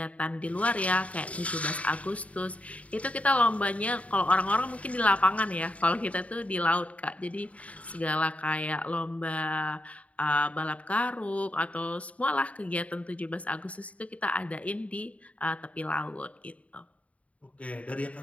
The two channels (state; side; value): late; right; 0.067 ms